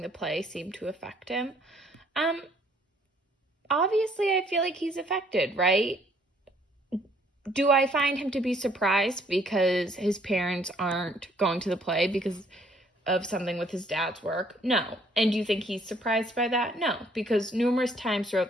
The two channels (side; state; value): both; normal; correlation 0.63